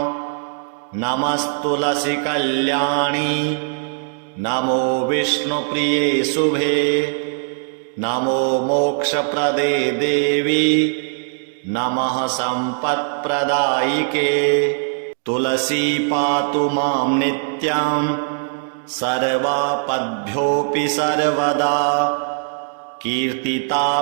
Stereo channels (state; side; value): silent; left; digital silence